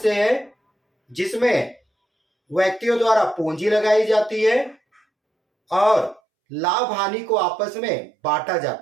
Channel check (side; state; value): left; drops out; at 6.2 s